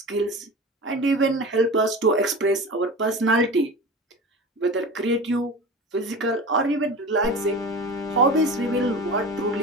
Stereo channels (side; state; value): both; normal; correlation 0.32